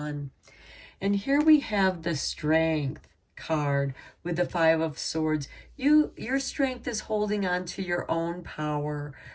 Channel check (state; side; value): identical; both; correlation 1.00